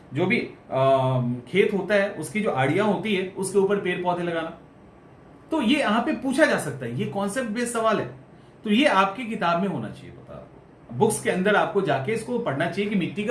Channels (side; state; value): both; identical; correlation 1.00